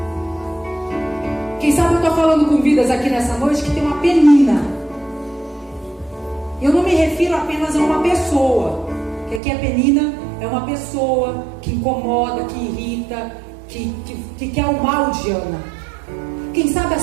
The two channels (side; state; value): left; drops out; at 9.4 s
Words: Quem sabe eu estou falando com vidas aqui nessa noite que tem uma Penina. Eu não me refiro apenas a uma pessoa, que aqui a Penina é uma pessoa que incomoda, que irrita, que quer o mal de Ana. Quem sabe a